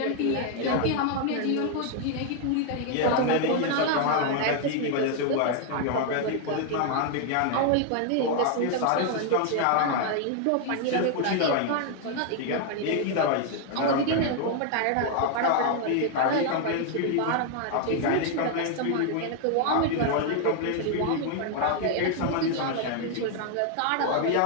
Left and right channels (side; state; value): both; different; correlation 0.00